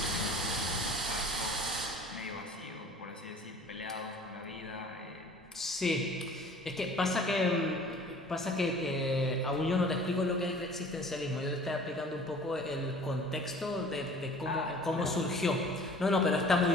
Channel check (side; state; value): both; normal; correlation 0.48